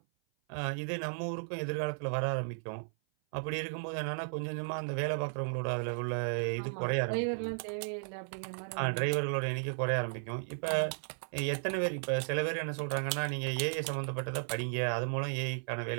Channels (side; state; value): left; silent; 55 dB below the other